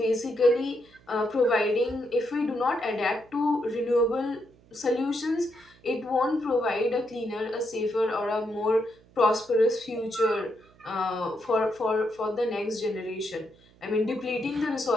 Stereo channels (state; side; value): noise; right; hum, 28 dB below the sound